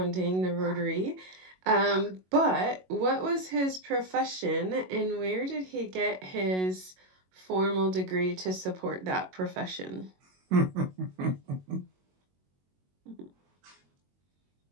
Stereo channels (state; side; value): late; left; 22 ms